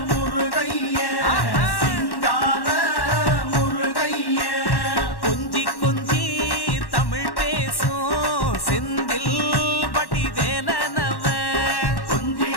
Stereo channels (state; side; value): late; right; 1.1 ms